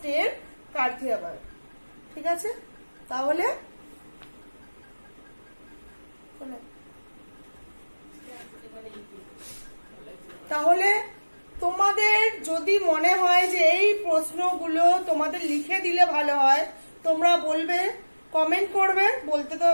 কাথিয়াবাড়। ঠিক আছে, তাহলে তোমাদের যদি মনে হয় যে এই প্রশ্নগুলো তোমাদের লিখে দিলে ভালো হয়, তোমরা বলবে, কমেন্ট করবে। বলতে তো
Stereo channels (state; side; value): inverted; both; correlation -1.00